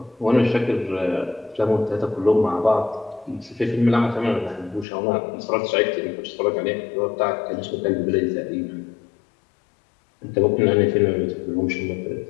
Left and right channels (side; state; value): right; drops out; at 4.9 s